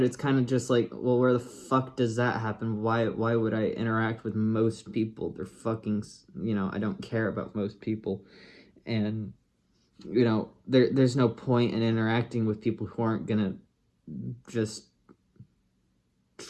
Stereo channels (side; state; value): both; identical; correlation 1.00